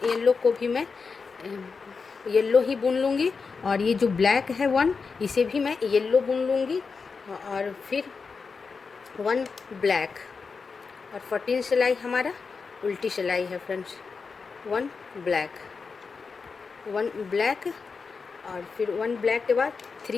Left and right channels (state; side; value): quieter; right; 5.0 dB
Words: येलो को भी मैं येलो ही बुन लूँगी, और ये जो ब्लैक है 1, इसे भी मैं येलो बुन लूँगी, और फिर 1 ब्लैक, और 14 सिलाई हमारा उल्टी सिलाई है फ्रेंड्स। 1 ब्लैक, 1 ब्लैक, और फिर 1 ब्लैक के बाद